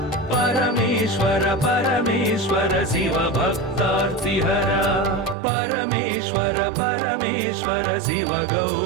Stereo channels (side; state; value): left; drops out; at 5.4 s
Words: परमेश्वर परमेश्वर शिव भक्तार्तिहरा परमेश्वर परमेश्वर शिव